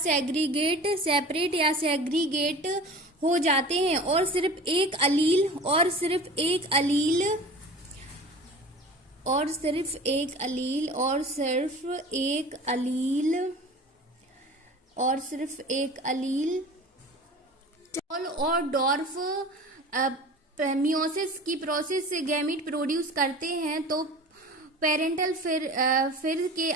सेग्रीगेट हो जाते हैं और सिर्फ एक अलील स्मॉल और डॉर्फ मियोसिस की प्रोसेस से गैमीट प्रोड्यूस करते हैं, तो पेरेंटल फिर के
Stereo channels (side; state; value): both; normal; correlation 0.38